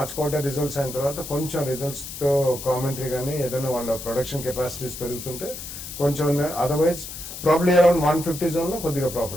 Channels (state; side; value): noise; left; hiss, 10 dB below the sound